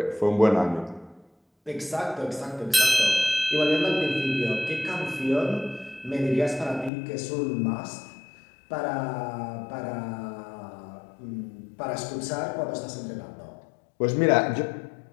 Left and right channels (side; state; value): right; drops out; at 6.9 s